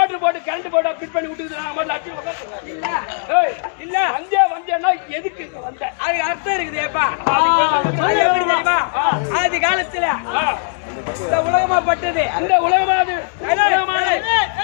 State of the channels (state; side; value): silent; right; 67 dB below the other